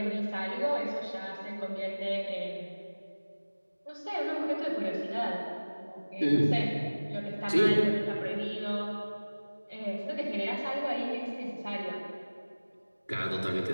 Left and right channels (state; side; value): inverted; both; correlation -1.00